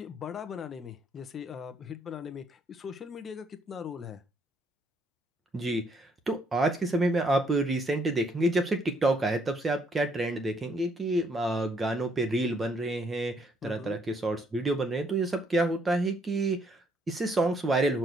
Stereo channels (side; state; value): both; normal; correlation 0.69